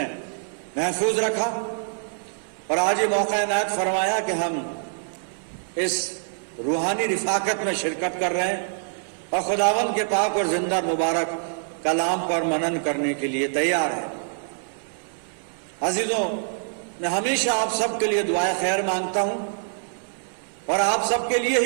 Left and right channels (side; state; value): left; silent; 62 dB below the other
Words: महफूज रखा और आज ये मौका इनायत फरमाया कि हम इस रूहानी रिफाकत में शिरकत कर रहे हैं और खुदावंद के पाक और जिंदा मुबारक कलाम पर मनन करने के लिए तैयार है। अजीजों, मैं हमेशा आप सबके लिए दुआए खैर मांगता हूं और आप सबके लिए